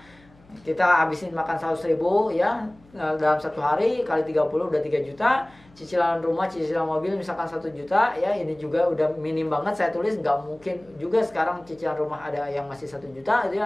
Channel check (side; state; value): left; noise; hum, 28 dB below the sound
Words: kita habisin makan 100.000 ya dalam 1 hari kali 30 udah 3 juta. Cicilan rumah, cicilan mobil misalkan 1 juta ya, ini juga udah minim banget saya tulis. Nggak mungkin juga sekarang cicilan rumah ada yang masih 1 juta gitu